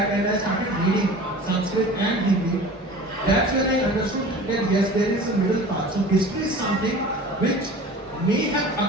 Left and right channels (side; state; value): both; normal; correlation 0.40